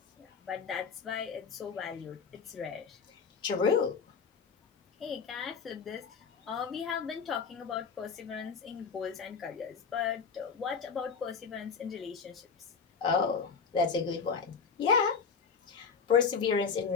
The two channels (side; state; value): right; quieter; 5.6 dB